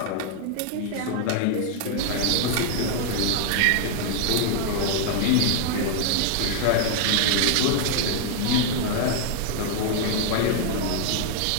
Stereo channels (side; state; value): both; different; correlation 0.00